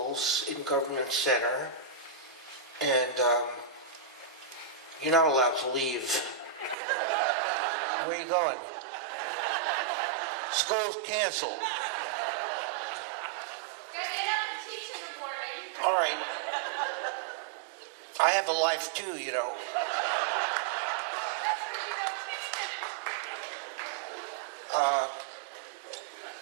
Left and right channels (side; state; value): left; drops out; at 6.8 s